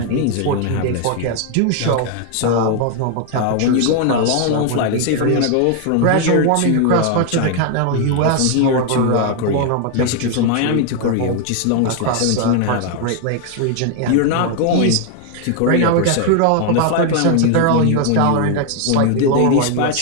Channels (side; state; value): both; different; correlation 0.00